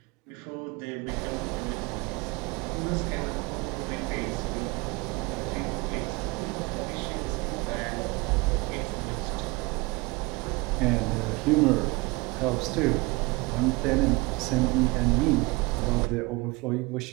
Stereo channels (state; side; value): quieter; left; 25.0 dB